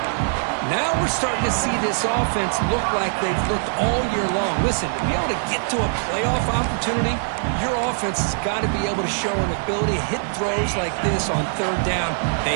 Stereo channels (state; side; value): silent; left; digital silence